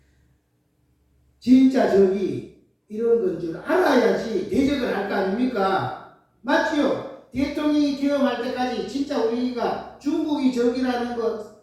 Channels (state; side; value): identical; both; correlation 1.00